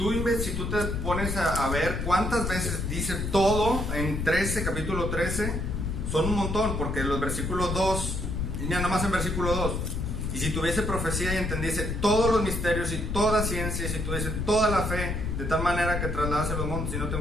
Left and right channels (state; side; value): noise; left; rumble, 2 dB below the sound